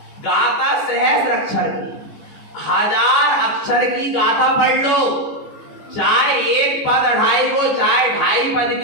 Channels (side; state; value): right; late; 14 ms